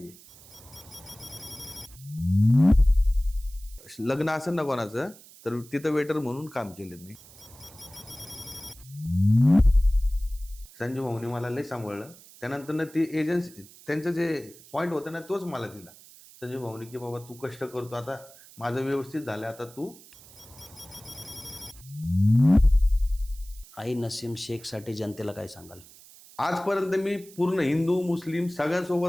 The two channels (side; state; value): right; noise; hiss, 22 dB below the sound